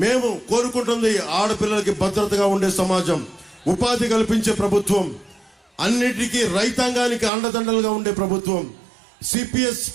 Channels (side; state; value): left; drops out; at 7.3 s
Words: మేము కోరుకుంటుంది ఆడపిల్లలకి భద్రతగా ఉండే సమాజం, ఉపాధి కల్పించే ప్రభుత్వం, అన్నిటికీ రైతాంగానికి అండదండలుగా ఉండే ప్రభుత్వం.